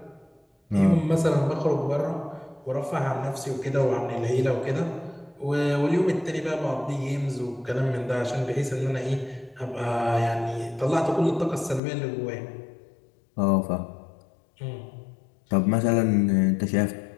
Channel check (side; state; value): right; drops out; at 11.8 s